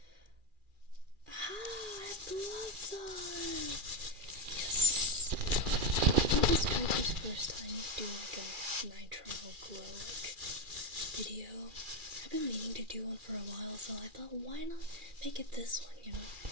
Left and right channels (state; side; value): late; left; 2.4 ms